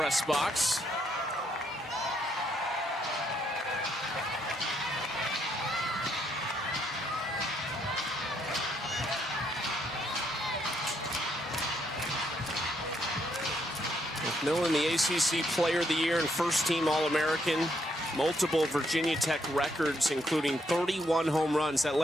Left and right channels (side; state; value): both; normal; correlation 0.74